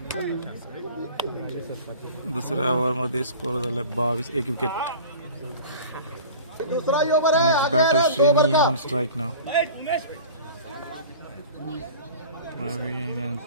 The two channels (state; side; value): inverted; both; correlation -0.40